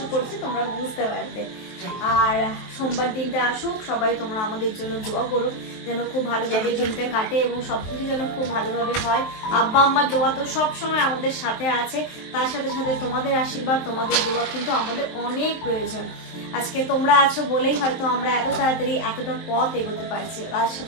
করছি তোমরা বুঝতে পারবে। আর সোমবার দিনটা আসুক, সবাই তোমরা আমাদের জন্য দোয়া করো যেন খুব ভালোভাবে দিনটা কাটে এবং সবকিছু যেন খুব ভালোভাবে হয়। আব্বা আম্মার দোয়া তো সব সময় আমাদের সাথে আছে, তার সাথে সাথে তোমাদের আশীর্বাদ, তোমাদের দোয়া কিন্তু আমাদের অনেক প্রয়োজন। আজকে তোমরা আছো বলেই হয়তো আমরা এত তাড়াতাড়ি এতটা পথ এগোতে পারছি, তার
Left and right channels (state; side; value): late; right; 23 ms